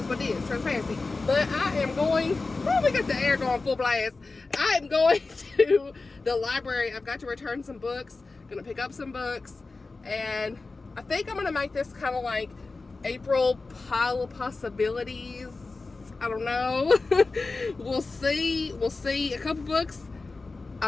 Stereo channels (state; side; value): quieter; right; 3.7 dB